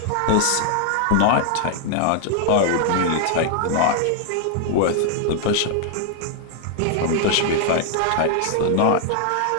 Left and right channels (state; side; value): different; both; correlation 0.00